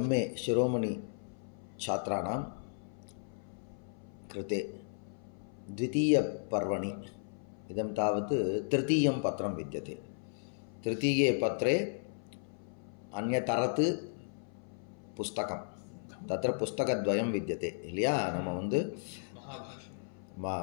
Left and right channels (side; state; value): right; silent; 55 dB below the other